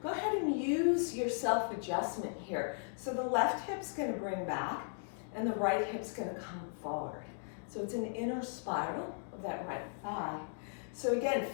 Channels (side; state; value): right; silent; digital silence